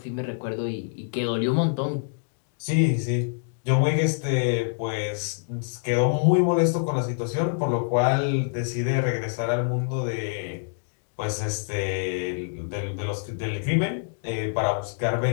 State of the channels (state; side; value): silent; right; digital silence